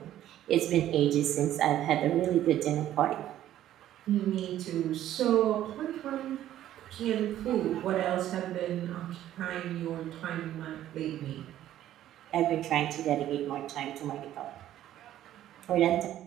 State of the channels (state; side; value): quieter; left; 12.5 dB